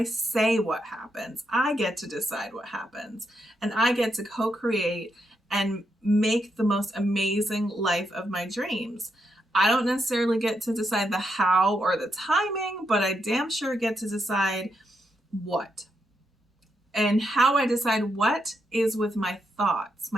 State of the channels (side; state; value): both; normal; correlation 0.81